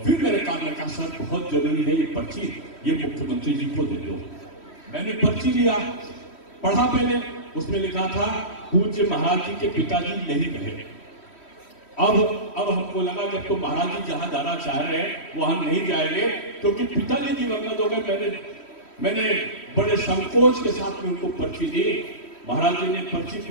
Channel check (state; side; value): late; right; 3.1 ms